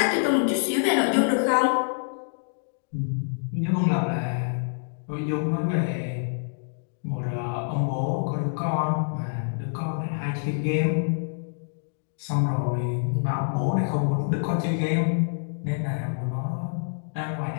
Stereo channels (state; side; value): silent; right; digital silence